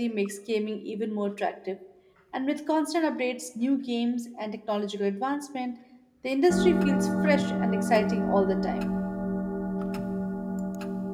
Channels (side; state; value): both; identical; correlation 1.00